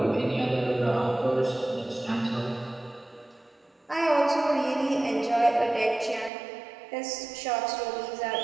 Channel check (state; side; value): drops out; left; at 6.3 s